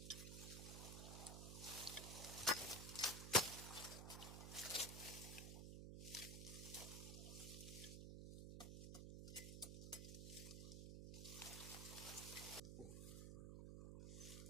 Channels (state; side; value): noise; right; hum, 5 dB below the sound